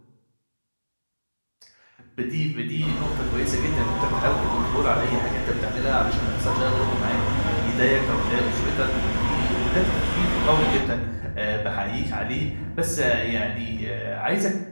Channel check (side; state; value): both; inverted; correlation -1.00